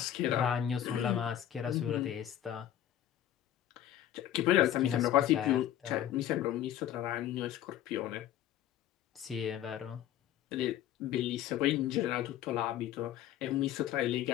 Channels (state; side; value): quieter; right; 11.5 dB